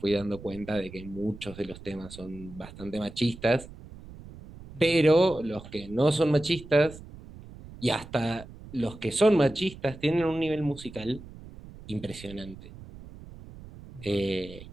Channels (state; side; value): noise; right; rumble, 16 dB below the sound